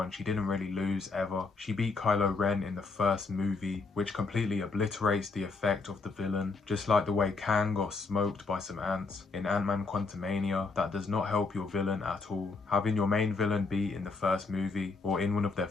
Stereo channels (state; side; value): quieter; right; 4.1 dB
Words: She didn't really lose ever. She beat Kylo Ren in the first movie, which completely obliterates the effect of the villain. Just like the way Kang got smoked by some ants in Ant-Man Quantumania, that does not help your villain at all. Having your main villain be in the first movie or in one of their